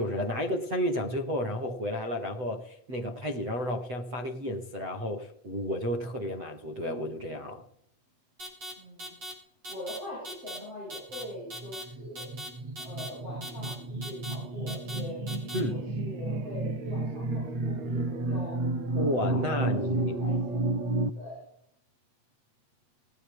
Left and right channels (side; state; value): left; late; 8.2 ms